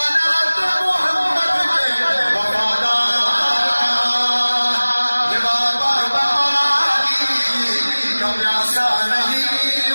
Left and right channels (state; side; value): inverted; both; correlation -1.00